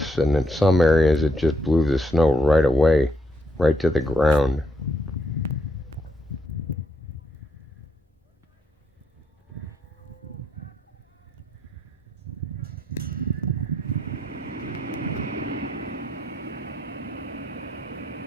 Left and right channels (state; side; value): normal; both; correlation 0.75